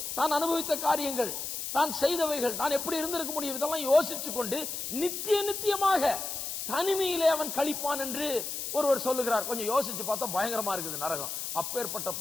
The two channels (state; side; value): noise; left; hiss, 5 dB below the sound